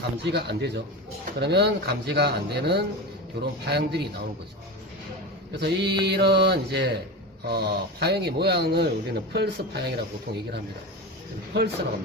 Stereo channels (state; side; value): normal; both; correlation 0.24